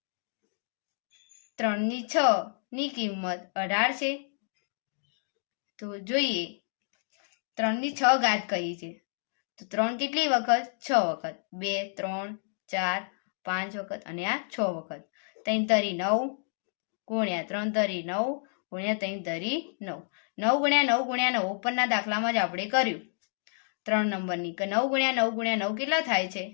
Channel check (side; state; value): right; silent; digital silence